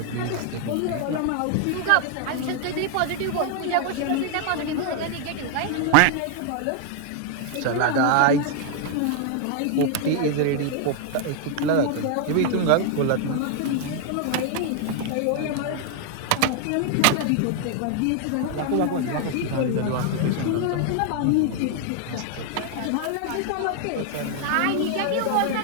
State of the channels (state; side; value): different; both; correlation 0.00